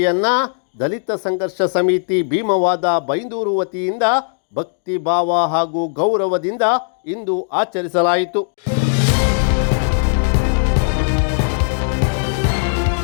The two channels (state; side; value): silent; right; digital silence